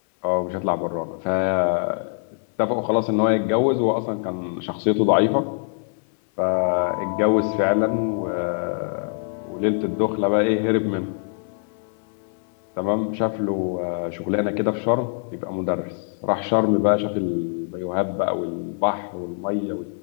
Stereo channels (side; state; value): right; silent; digital silence